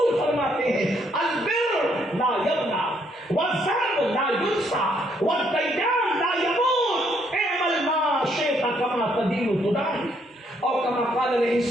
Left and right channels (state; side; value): normal; both; correlation 0.70